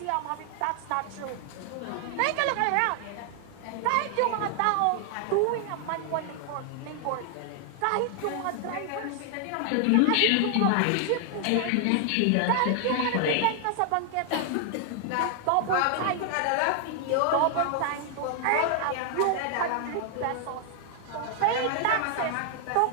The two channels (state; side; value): different; both; correlation 0.00